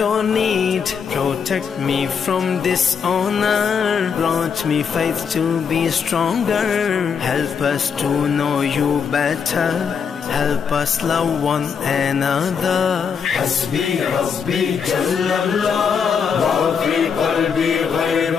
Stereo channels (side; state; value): right; quieter; 6.5 dB